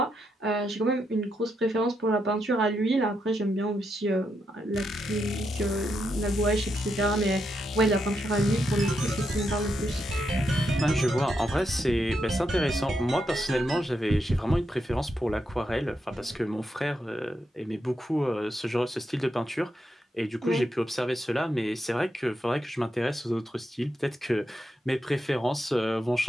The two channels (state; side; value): normal; both; correlation 0.82